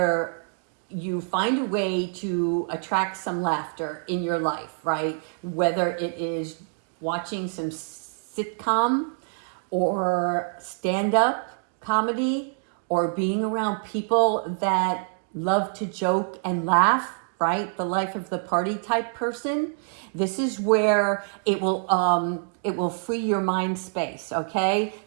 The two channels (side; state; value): left; silent; 61 dB below the other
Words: you find a way to attract some laughter in your life, right? Whether it is watching some sitcom or stand-up comedy, or being around people that love to joke and laugh, right? The life of the party type person. This is where it will free your mind space, okay?